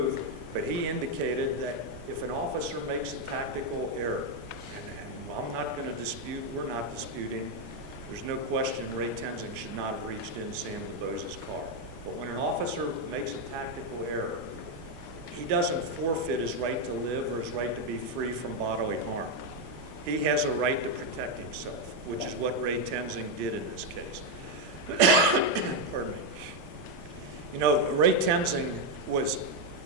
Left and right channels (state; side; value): normal; both; correlation 0.03